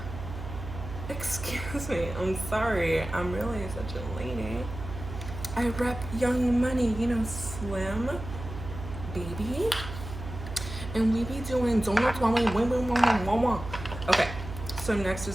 excuse me, I'm sorry. I'm really such a lady. I rep Young Money, you know, Slim, baby. And we be doing donuts while we win. Okay, so next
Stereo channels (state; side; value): noise; right; hum, 9 dB below the sound